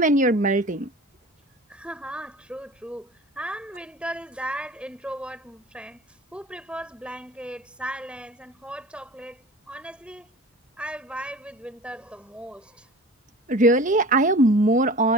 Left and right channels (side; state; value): both; normal; correlation 0.39